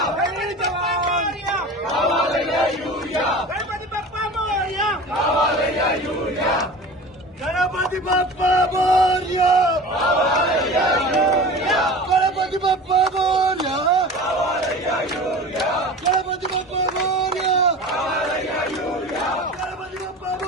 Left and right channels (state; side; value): normal; both; correlation 0.36